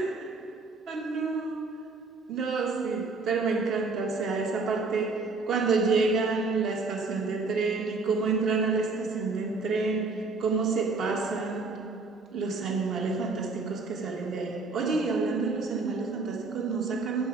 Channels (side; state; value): left; quieter; 3.9 dB